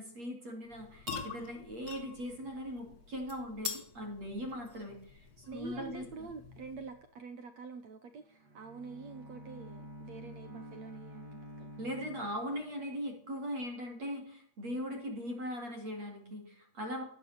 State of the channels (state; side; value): late; left; 8.1 ms